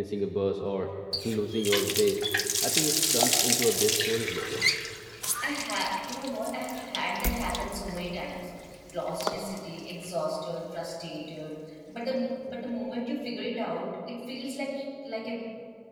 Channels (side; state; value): both; identical; correlation 1.00